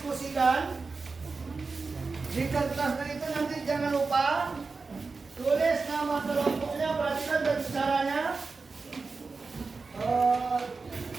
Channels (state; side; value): quieter; left; 4.3 dB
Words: Di kertasnya itu nanti jangan lupa tulis nama kelompoknya, perhatikan dan caranya.